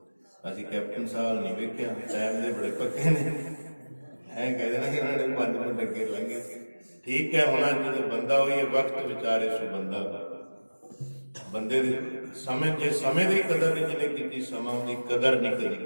ਅਸੀਂ ਕੈਪਟਨ ਸਾਹਿਬ ਨਹੀਂ ਵੇਖਿਆ, ਟਾਈਮ ਦੇ ਬੜੇ ਪੱਕੇ ਨੇ। ਐਂ ਕਹਿੰਦੇ ਨਾ ਕਿ ਉਹਨਾਂ ਨੇ 5 ਮਿੰਟ ਅੱਗੇ ਲੰਘੇ। ਠੀਕ ਹੈ, ਹੁਣ ਜਦੋਂ ਬੰਦਾ ਹੋਈ ਵਕਤ ਵਿਚਾਰੇ ਸੋ ਬੰਦਾ। ਬੰਦੇ ਦੇ ਸਮੇਂ, ਜੇ ਸਮੇਂ ਦੀ ਕਦਰ ਨਹੀਂ ਜਿਹਨੇ ਕੀਤੀ, ਸਮਾਂ ਦੀ ਕਦਰ ਨਹੀਂ ਕਦੀ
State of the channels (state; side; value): inverted; both; correlation -1.00